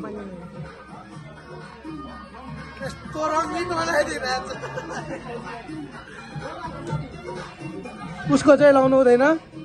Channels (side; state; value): both; identical; correlation 1.00